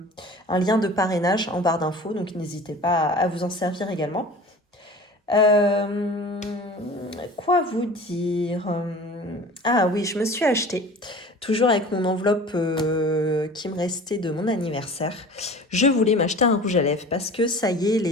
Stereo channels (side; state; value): both; normal; correlation 0.40